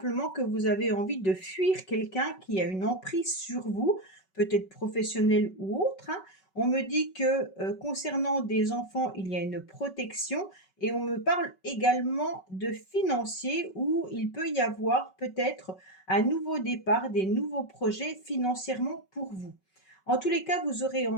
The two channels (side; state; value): right; late; 5.3 ms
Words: que vous avez envie de fuir quelqu'un qui a une emprise sur vous, peut-être professionnel ou autre, hein. On me dit que concernant des enfants, il y a une protection, et on me parle également de financier où il peut y avoir peut-être un nouveau départ, des nouveaux projets financièrement pour vous. En tous les cas, vous aurez